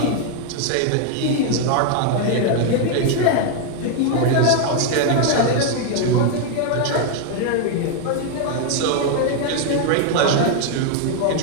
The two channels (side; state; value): both; different; correlation 0.00